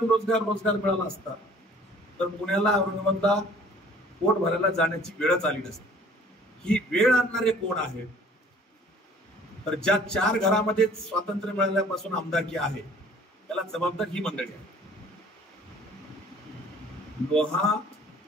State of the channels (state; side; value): normal; both; correlation 0.53